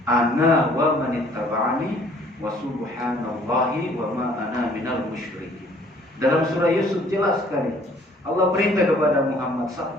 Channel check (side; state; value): both; normal; correlation 0.58